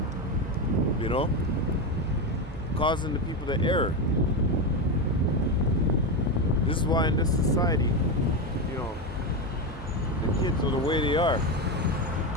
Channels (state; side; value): normal; both; correlation 0.13